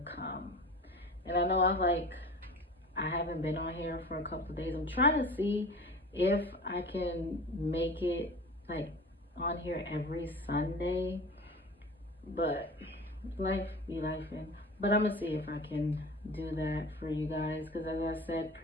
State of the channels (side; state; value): both; normal; correlation 0.37